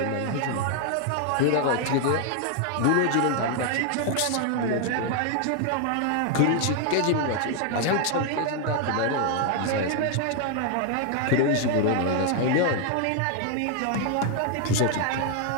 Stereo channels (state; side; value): different; both; correlation 0.00